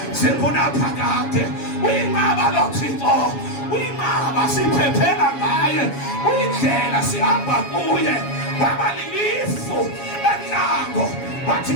zikunaphakade. Uyinqaba lo Thixo, uyinqaba siphephela ngaye, uyindlela sihamba kuye. Waba lilifu enhlango, wathi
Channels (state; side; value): late; right; 7.2 ms